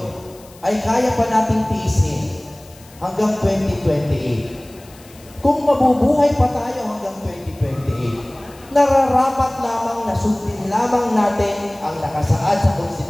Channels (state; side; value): noise; left; hiss, 24 dB below the sound